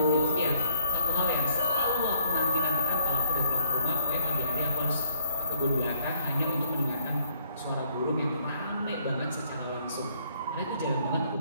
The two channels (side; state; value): both; inverted; correlation -0.65